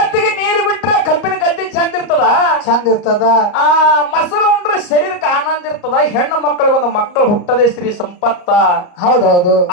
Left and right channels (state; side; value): late; right; 34 ms